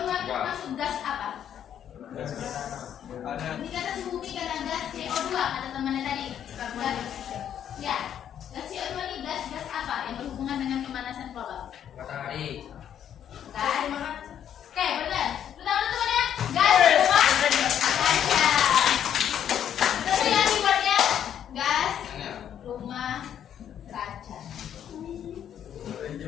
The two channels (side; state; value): right; quieter; 9.6 dB